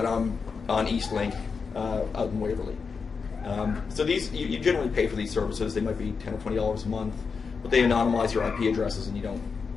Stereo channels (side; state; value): right; quieter; 5.3 dB